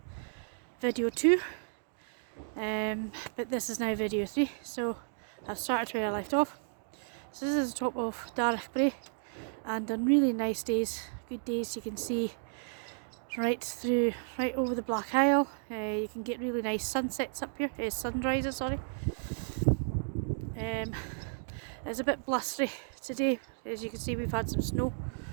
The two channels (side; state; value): left; silent; digital silence